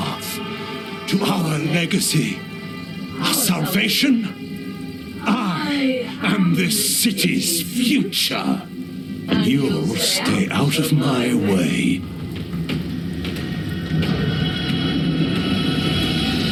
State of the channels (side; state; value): both; identical; correlation 1.00